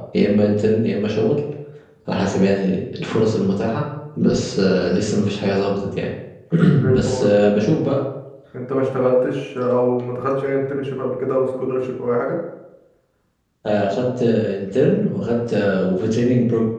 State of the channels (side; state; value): both; identical; correlation 1.00